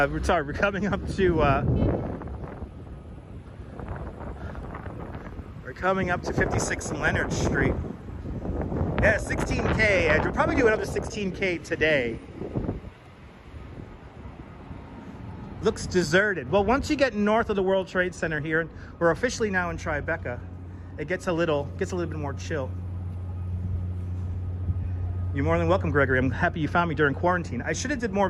we're coming up to 56 and Leonard Street. Yeah, 16K, and we'll probably do another 16K today. Looks deserted. Well, once you get north of the World Trade Center here, we're officially now in Tribeca, it gets a little bit more chill. You're more than welcome, Gregory. I'm happy you found me during quarantine. I should have did more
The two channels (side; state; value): both; identical; correlation 1.00